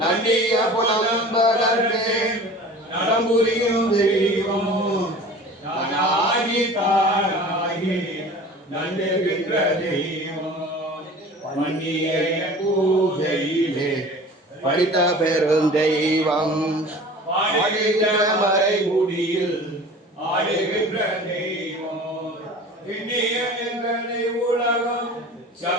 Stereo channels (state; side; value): normal; both; correlation 0.41